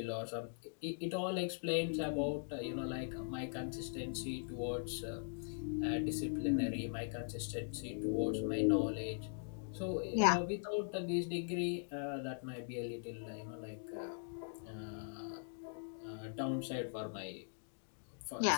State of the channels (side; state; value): right; silent; digital silence